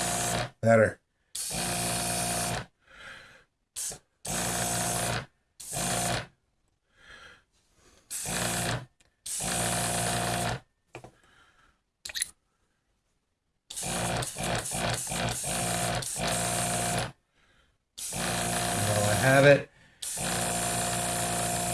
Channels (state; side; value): identical; both; correlation 1.00